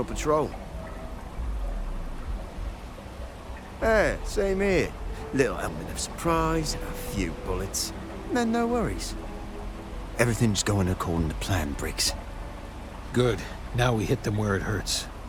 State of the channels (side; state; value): both; identical; correlation 1.00